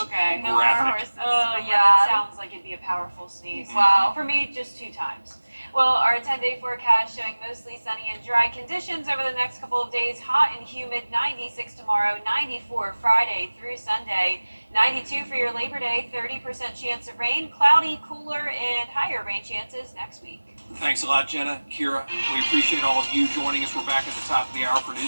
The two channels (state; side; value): inverted; both; correlation -1.00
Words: okay. No more graphic. horses. Oh, for yeah, Brad. that sounds like it'd be a powerful sneeze. Wow. For me, just 2 times. Well, our 10-day forecast showing mostly sunny and dry conditions over the next couple of days. Hot and humid, 96 tomorrow, 94 Friday through Sunday, 92 for your Labor Day, 30% chance of rain, cloudy, cooler, and higher rain chances next week. Thanks a lot, Jenna, Kira. We appreciate all of you joining us. We're back at the top of the hour for